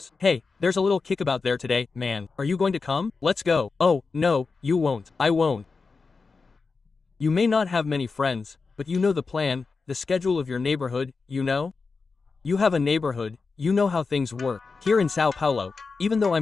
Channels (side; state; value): right; quieter; 4.5 dB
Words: Hey, there's a little kickabout there today, man. Are you going to come? Let's go. Oh, no, you won't. I won't. You may not have many friends, but you know the plan, the schedule of your neighborhood, you know? You have a neighborhood, you know how things work. Here in Sao Paulo, even though